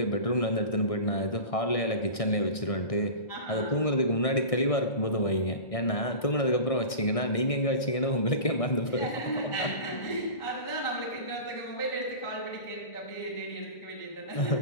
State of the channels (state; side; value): late; right; 1.6 ms